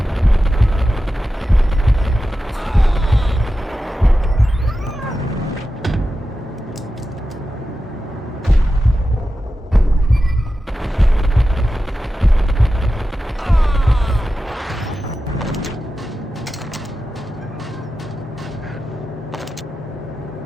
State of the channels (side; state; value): both; normal; correlation 0.92